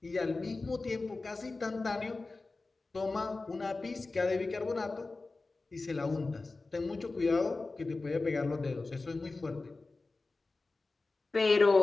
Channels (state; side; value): quieter; right; 3.5 dB